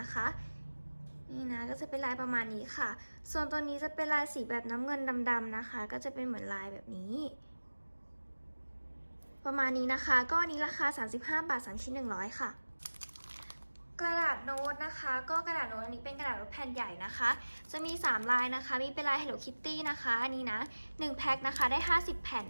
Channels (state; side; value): inverted; both; correlation -1.00